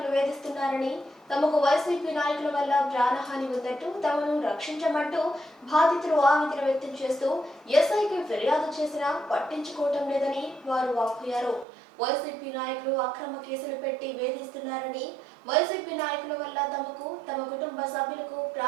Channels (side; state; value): left; drops out; at 11.7 s